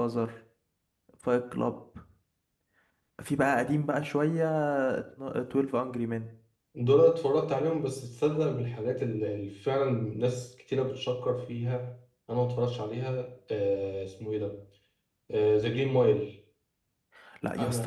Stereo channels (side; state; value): both; identical; correlation 1.00